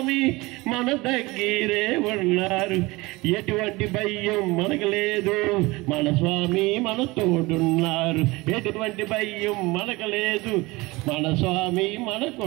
మన దగ్గరే ఉన్నారు. ఎటువంటి భయం మనకు లేదు, మన స్వామి మన తోడున్నారు. ఎటువంటి భయం మనకు లేదు, మన స్వామి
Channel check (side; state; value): left; quieter; 22.4 dB